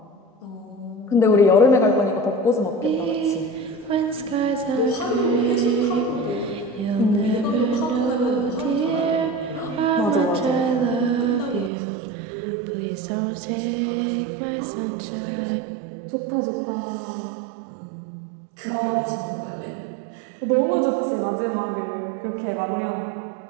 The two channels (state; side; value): drops out; left; at 11.7 s